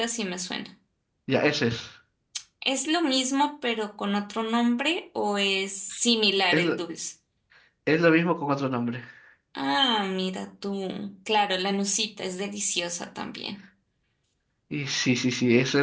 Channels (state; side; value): identical; both; correlation 1.00